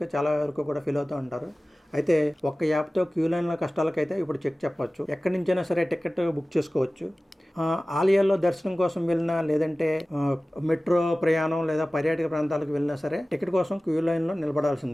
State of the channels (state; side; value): normal; both; correlation 0.97